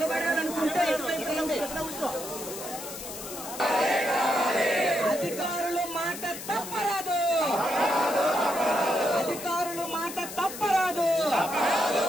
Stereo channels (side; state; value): left; noise; hiss, 10 dB below the sound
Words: ఇటువైపు రండి. అధికారులు మాట తప్పరాదు, అధికారులు మాట తప్పరాదు,